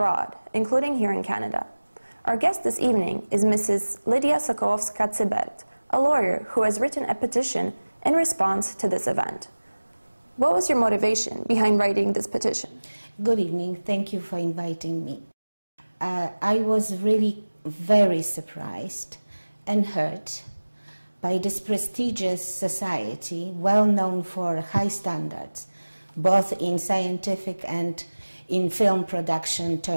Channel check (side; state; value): both; inverted; correlation -1.00